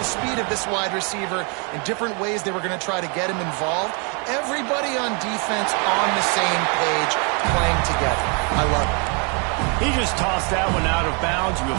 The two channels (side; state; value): left; quieter; 35.1 dB